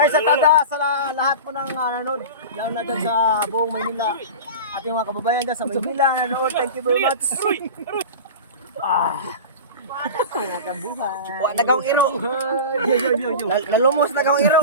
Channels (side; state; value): both; inverted; correlation -0.31